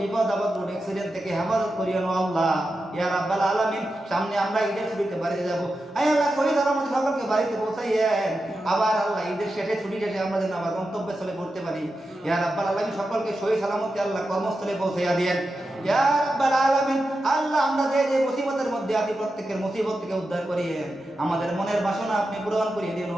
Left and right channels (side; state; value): both; normal; correlation 0.90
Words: বিপদ আপদ রোড অ্যাক্সিডেন্ট থেকে হেফাজত করিও আল্লাহ ইয়া রাব্বাল আলামিন সামনে আমরা ঈদের ছুটিতে বাড়িতে যাব আয় আল্লাহ শহীদ আমাদের সকলকে বাড়িতে পৌঁছাইয়েন আবার আল্লাহ ঈদের শেষে ছুটি শেষে আমরা যেন আবার গন্তব্যে চলে পড়তে পারি ইয়া রাব্বাল আলামিন সকলকে সহি সালামতে আল্লাহ কর্মস্থলে পৌঁছাইয়া দেন ইয়া রাব্বাল আলামিন আল্লাহ আমরা যে মুসিবতের মধ্যে আছি প্রত্যেকের মুসিবত থেকে উদ্ধার করিয়েন আমাদের মনের বাসনা আপনি পূরণ করিয়ে দিন